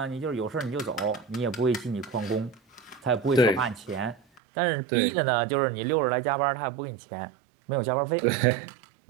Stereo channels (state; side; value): drops out; left; at 4.4 s